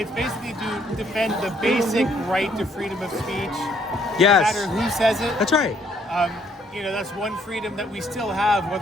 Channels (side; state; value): both; normal; correlation 0.67